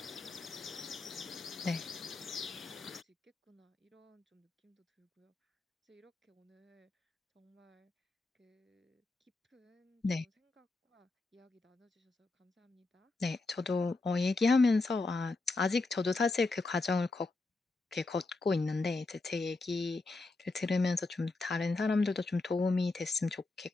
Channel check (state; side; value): quieter; right; 3.4 dB